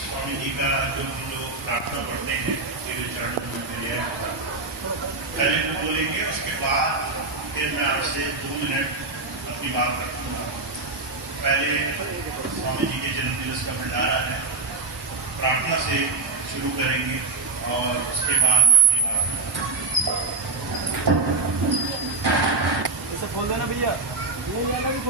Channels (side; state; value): left; quieter; 3.6 dB